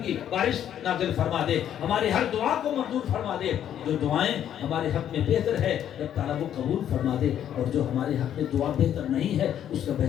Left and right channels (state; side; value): quieter; right; 10.2 dB